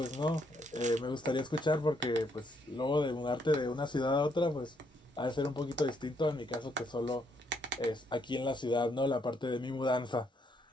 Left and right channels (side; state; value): both; normal; correlation 0.73